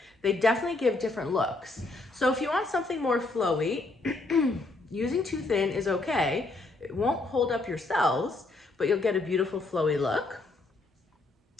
they definitely give different looks. So if you want something more flowy, using too thin is okay. It won't hold up your cells, but you'll get a beautiful flowy look.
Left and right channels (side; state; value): right; quieter; 3.2 dB